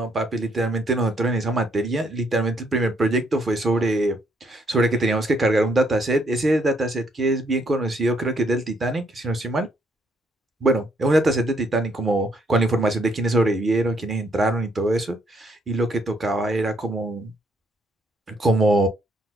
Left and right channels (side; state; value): both; normal; correlation 0.70